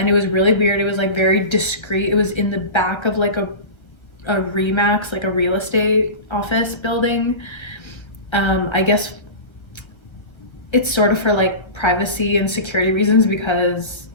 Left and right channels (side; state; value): right; late; 1.3 ms